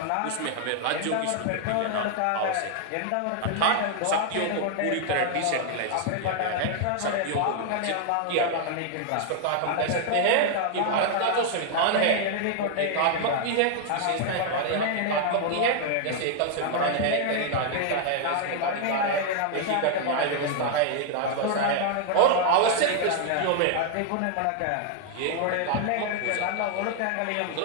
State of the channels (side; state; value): both; different; correlation 0.00